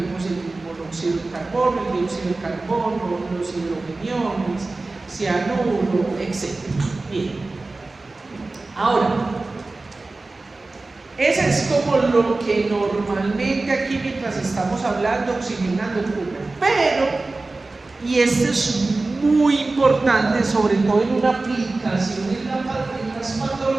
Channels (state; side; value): quieter; left; 3.3 dB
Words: el monóxido de carbono, el dióxido de carbono, los hidrogeniones, cianuro, etc. Bien. Ahora, ese es como lo que normalmente aquí mientras estamos hablando, oxigenando ocurre. Pero, y esto es muy importante, sobre todo en una aplicación en las